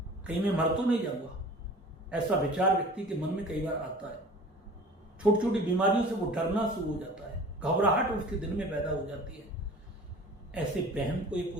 कहीं मैं मर तो नहीं जाऊंगा। ऐसा विचार व्यक्ति के मन में कई बार आता है। छोटी छोटी बीमारियों से वो डरना शुरू हो जाता है, घबराहट उसके दिल में पैदा हो जाती है। ऐसे वहम को ये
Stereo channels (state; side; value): normal; both; correlation 0.43